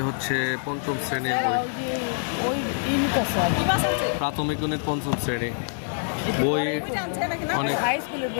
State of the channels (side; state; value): right; silent; 61 dB below the other